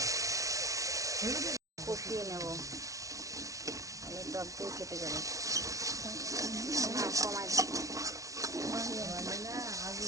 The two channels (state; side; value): late; left; 0.16 ms